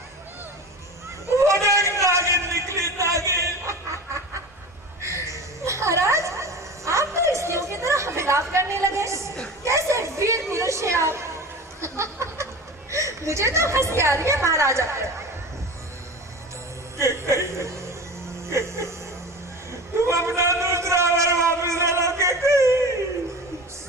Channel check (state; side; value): normal; both; correlation 0.33